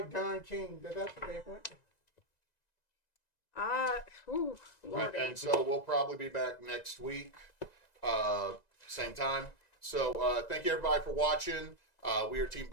Don King. That's what they want. Lordy. And so we'll probably be back next week, same time. So thank you everybody for watching. We are Team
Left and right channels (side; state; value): right; late; 1.9 ms